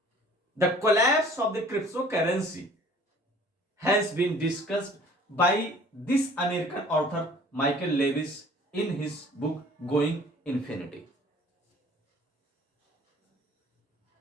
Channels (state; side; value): normal; both; correlation 0.51